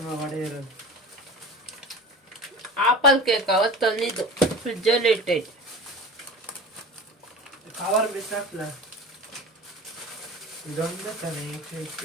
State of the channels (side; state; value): both; normal; correlation 0.36